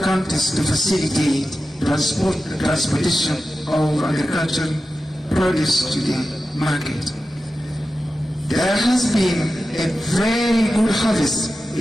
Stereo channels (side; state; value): both; normal; correlation 0.93